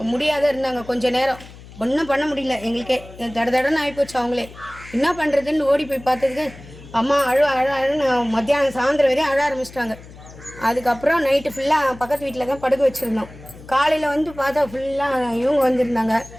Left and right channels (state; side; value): noise; left; hum, 19 dB below the sound